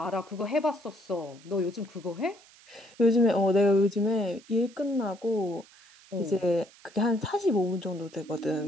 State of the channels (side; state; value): right; noise; hiss, 25 dB below the sound